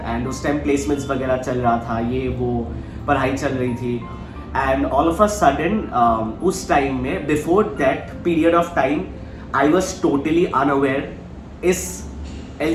and उस time placements वगैरह चल रहा था, ये वो पढ़ाई चल रही थी, and all of a sudden उस time में before that period of time I was totally unaware इस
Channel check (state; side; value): identical; both; correlation 1.00